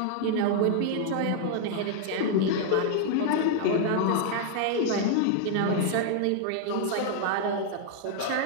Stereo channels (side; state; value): both; different; correlation 0.00